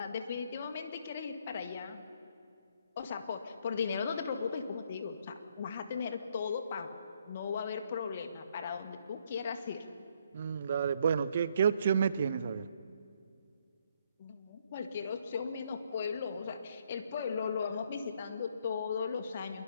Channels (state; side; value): inverted; both; correlation -0.69